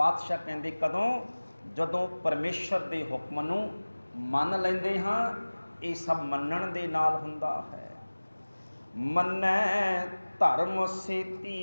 ਕਹਿੰਦੇ ਕਦੋਂ? ਜਦੋਂ ਪਰਮੇਸ਼ਰ ਦੇ ਹੁਕਮ ਨੂੰ ਮੰਨ ਲੈਂਦੇ ਹਾਂ। ਇਹ ਸਭ ਮੰਨਣ ਦੇ ਨਾਲ ਹੁੰਦਾ ਹੈ। ਮੰਨੈ ਧਰਮ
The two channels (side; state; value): both; inverted; correlation -1.00